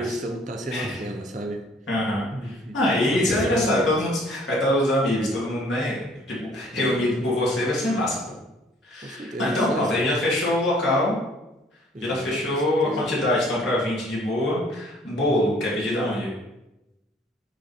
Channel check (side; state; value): both; normal; correlation 0.58